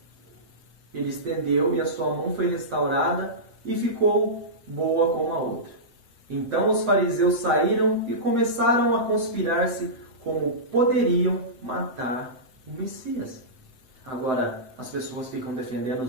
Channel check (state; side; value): late; left; 7.8 ms